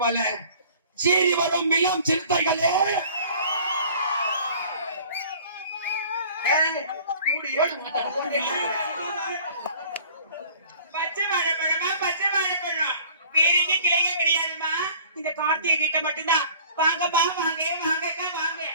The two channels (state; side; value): inverted; both; correlation -0.49